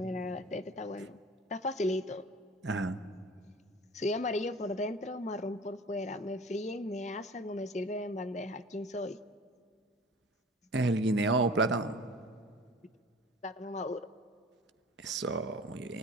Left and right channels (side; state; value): both; normal; correlation 0.43